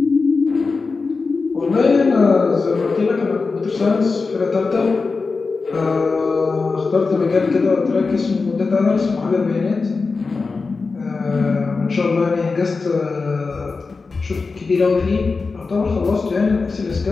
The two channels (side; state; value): right; quieter; 4.3 dB